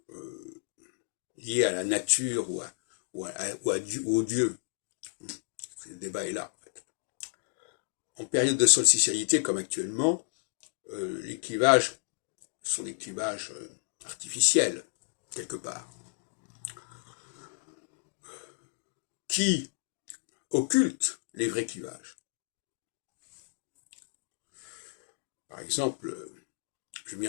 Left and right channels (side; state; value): right; silent; digital silence